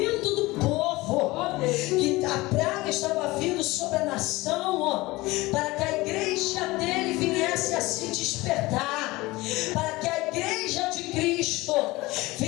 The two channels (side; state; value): right; quieter; 20.7 dB